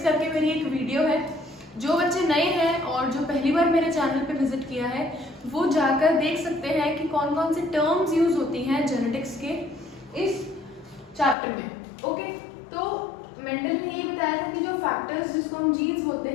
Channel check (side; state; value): right; drops out; at 11.4 s